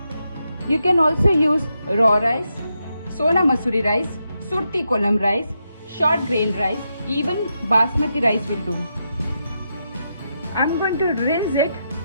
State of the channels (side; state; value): both; inverted; correlation -0.84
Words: You can also use raw rice, Sona Masuri rice, Surti Kolam rice, short grain rice, even Basmati rice will do. I'm going to rinse it